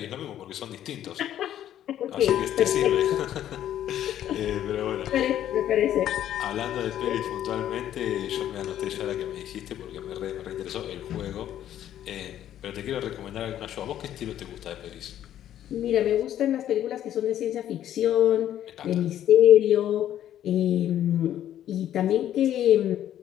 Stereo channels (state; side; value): quieter; right; 11.4 dB